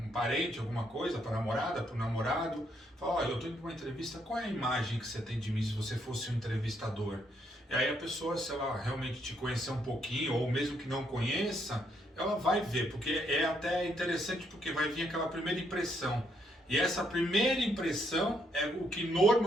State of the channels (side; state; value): both; normal; correlation 0.74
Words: parente, alguma coisa, para a namorada, para o namorado. Falar, olha, eu estou indo para uma entrevista, qual é a imagem que você tem de mim se você fosse um entrevistador? E aí a pessoa, se ela realmente te conhecer um pouquinho, ou mesmo que não conheça, ela vai ver, porque é até interessante, porque vai vir aquela primeira impressão. E essa primeira impressão é o que